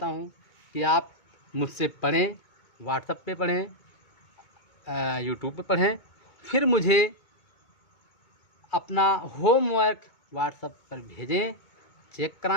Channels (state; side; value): late; right; 2.2 ms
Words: हूँ कि आप मुझसे पढ़ें, व्हाट्सएप पे पढ़ें, यूट्यूब पे पढ़ें, फिर मुझे अपना होमवर्क व्हाट्सएप पर भेजें, चेक